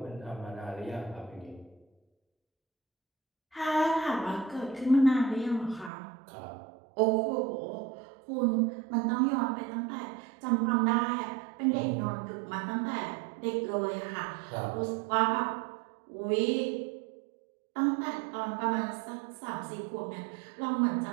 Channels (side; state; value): left; drops out; at 5.9 s